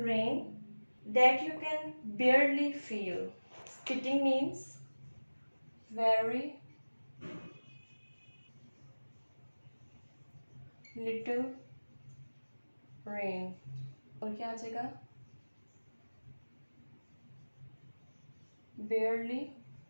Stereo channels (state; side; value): inverted; both; correlation -1.00